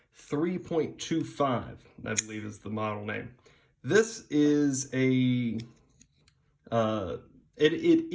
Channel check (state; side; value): identical; both; correlation 1.00